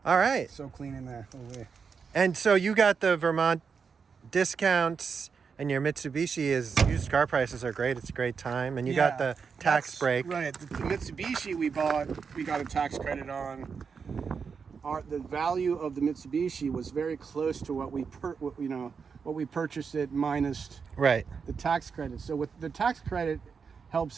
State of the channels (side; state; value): left; quieter; 5.8 dB